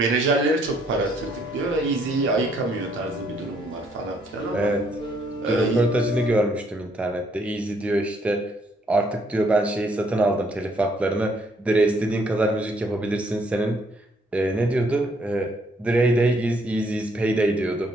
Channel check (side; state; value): both; normal; correlation 0.68